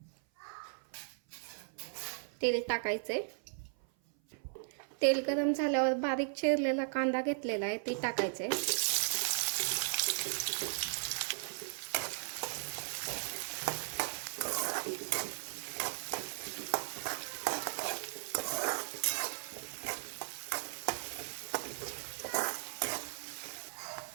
तेल टाकायचंय। तेल गरम झाल्यावर बारीक चिरलेला कांदा घेतलेला आहे ते टाकायचंय।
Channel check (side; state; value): left; silent; 53 dB below the other